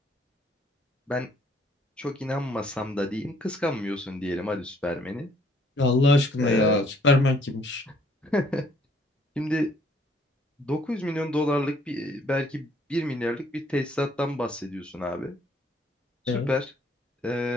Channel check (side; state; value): both; normal; correlation 0.63